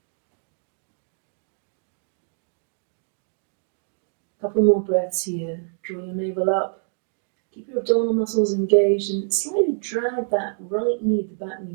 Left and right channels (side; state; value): left; silent; digital silence